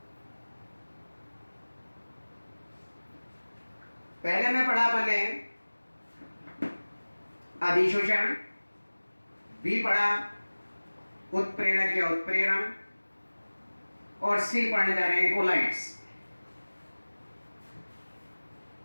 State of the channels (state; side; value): inverted; both; correlation -1.00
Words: पहले में पढ़ा अपन ने अधिशोषण, बी पढ़ा उत्प्रेरक या उत्प्रेरण, और सी पढ़ने जा रहे हैं कोलाइड्स।